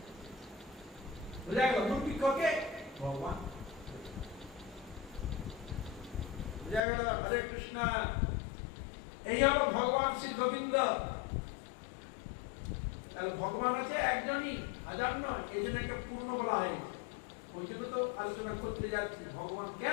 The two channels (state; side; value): drops out; right; at 6.8 s